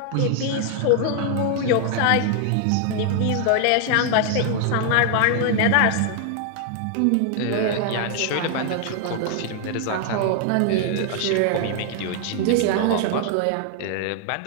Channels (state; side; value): different; both; correlation 0.00